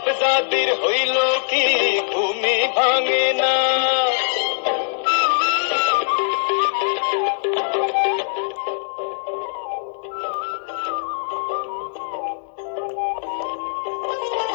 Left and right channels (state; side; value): silent; right; digital silence